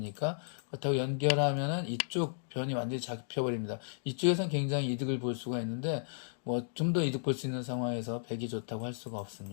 그렇다고 연결하면은 이쪽 변이 완전히 잡혀버립니다. 이쪽에선 굉장히 이득을 볼 수가 있는데 뭐 좀 더 이득 볼 수 있는 상황에서 백이 좋다고 할 수가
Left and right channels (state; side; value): silent; right; digital silence